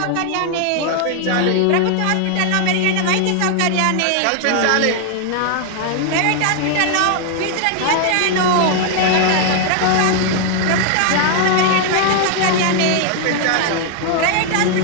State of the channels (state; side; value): different; both; correlation 0.00